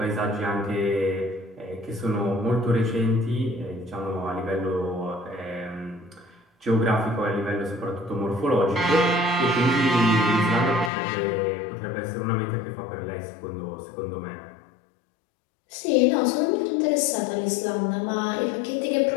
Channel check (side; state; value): right; drops out; at 10.9 s